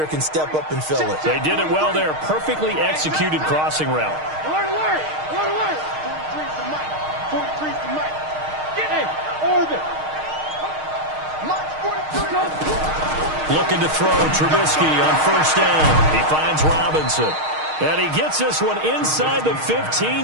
can step up and fill it. They did it well there. Perfectly executed crossing route. Alert, alert! Alert, alert! 43's the mic. 43's the mic. Hey, orbit. Looking to throw Trubisky on first down. He finds Robinson. And he gets this one inside the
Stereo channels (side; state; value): left; late; 6.5 ms